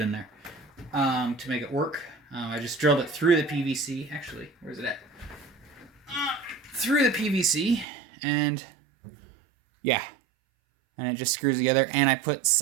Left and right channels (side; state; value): left; drops out; at 7.9 s